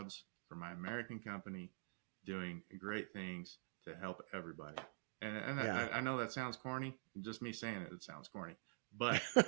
for my American company doing great things to help everybody. And I know that sounds corny. Just me saying it sounds corny. But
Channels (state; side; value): silent; left; digital silence